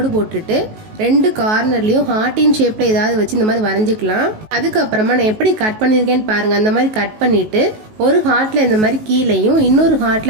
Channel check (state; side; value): late; left; 19 ms